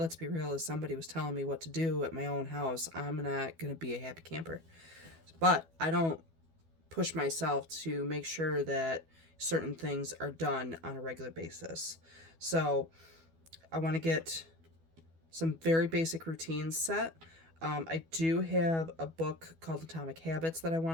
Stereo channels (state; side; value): late; left; 12 ms